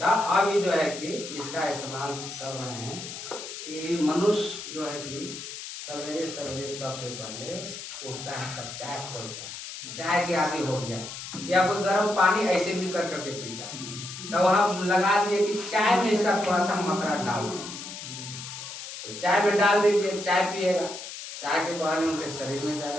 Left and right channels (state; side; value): noise; left; hiss, 10 dB below the sound